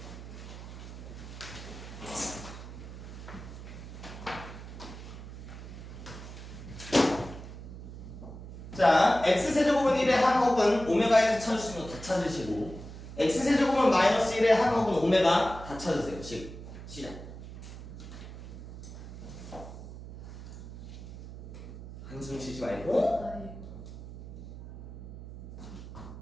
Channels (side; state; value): right; noise; hum, 12 dB below the sound